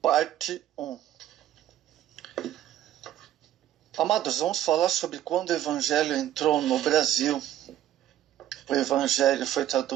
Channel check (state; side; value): quieter; left; 12.2 dB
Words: parte 1. Amados, vamos falar sobre quando o Evangelho entrou no Brasil. O Evangelho foi